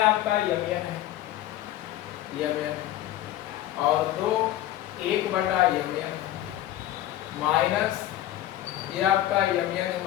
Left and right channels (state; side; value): quieter; right; 13.6 dB